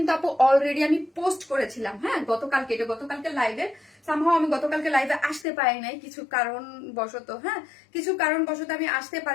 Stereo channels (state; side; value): drops out; right; at 5.5 s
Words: আপু অলরেডি আমি পোস্ট করেছিলাম, হ্যাঁ, গতকালকে। এটা গতকালকে লাইভে, সামহাও আমি গতকালকে লাইভে আসতে পারি নাই কিছু কারণবশত, হ্যাঁ, কিছু কারণবশত আমি আসতে